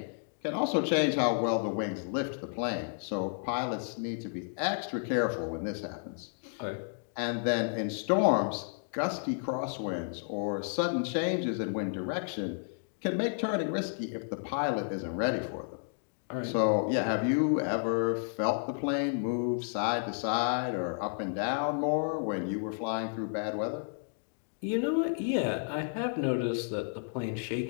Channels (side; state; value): right; silent; digital silence